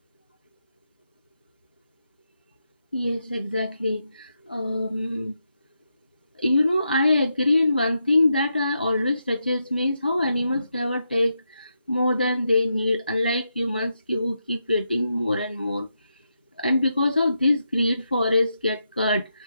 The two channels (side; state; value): both; inverted; correlation -0.84